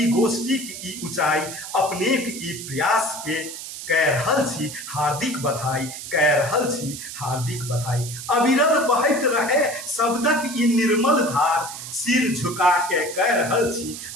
गोष्ठीक ई ऊंचाई। अपनेक ई प्रयास के कह रहल छी हार्दिक बधाई, कह रहल छी हार्दिक बधाई। अविरल बहैत रहे शब्दक ई निर्मल धार, सिर झुका के कह रहल छी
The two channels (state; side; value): noise; right; hiss, 10 dB below the sound